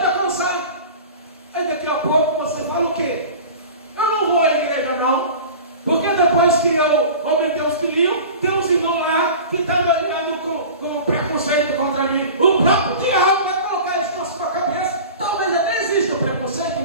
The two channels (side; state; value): both; inverted; correlation -0.37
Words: alcançar. Aí daqui a pouco você fala o quê? Eu não vou à igreja não, porque depois que eu aumentei os quilinhos, tem uns irmãos lá que estão me olhando com preconceito contra mim. O próprio diabo vai colocar isso na sua cabeça. Talvez até exista o preconceito